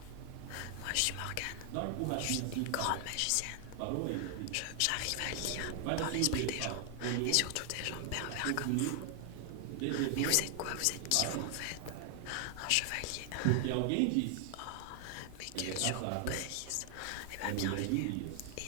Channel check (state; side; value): different; both; correlation 0.00